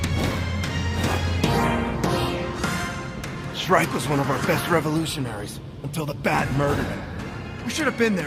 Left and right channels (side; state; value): both; identical; correlation 1.00